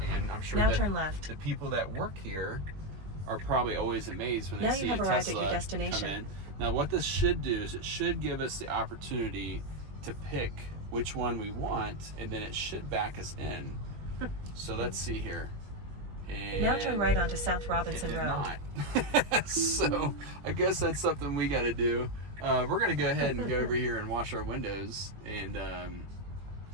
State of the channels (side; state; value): left; late; 21 ms